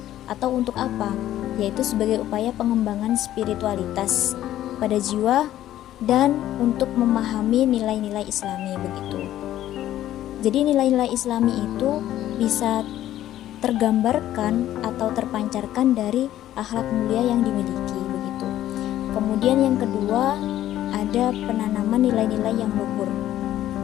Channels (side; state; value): right; quieter; 12.9 dB